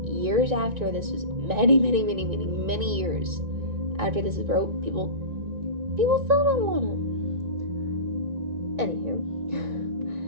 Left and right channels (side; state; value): left; late; 1.9 ms